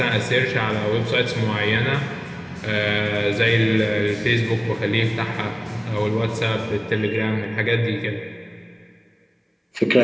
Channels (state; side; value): identical; both; correlation 1.00